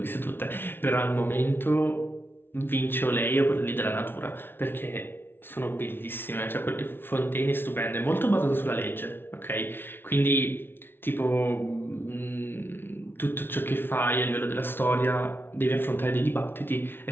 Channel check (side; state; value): right; late; 0.11 ms